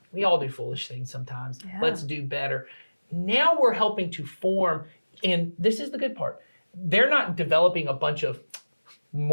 we all do foolish things sometimes. Yeah. Let's do better. Now we're helping to form, and this is the good part, they're not developing a bunch of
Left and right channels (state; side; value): inverted; both; correlation -1.00